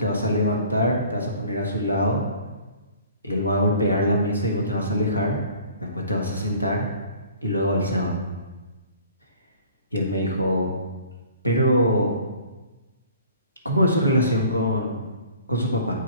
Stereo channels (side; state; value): both; inverted; correlation -0.50